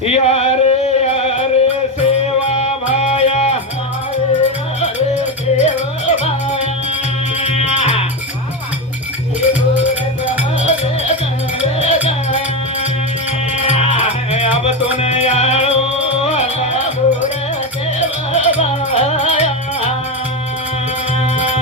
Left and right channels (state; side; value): normal; both; correlation 0.14